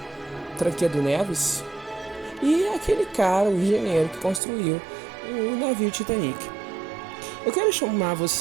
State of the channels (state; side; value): drops out; left; at 4.4 s